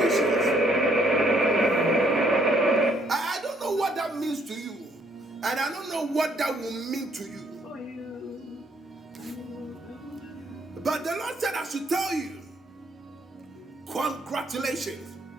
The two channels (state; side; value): normal; both; correlation 0.68